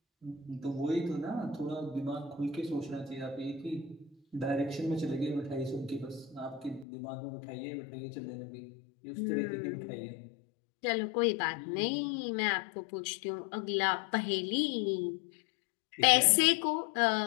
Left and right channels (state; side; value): drops out; right; at 6.9 s